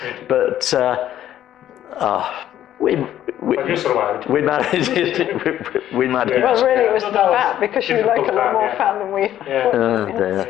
but we But you survived. we managed it. We managed. Yeah. Well, really, it was No, the that was fat, because you like a difficult lot fat, more yeah. fat than we. Yeah. Oh,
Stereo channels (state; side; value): quieter; right; 11.8 dB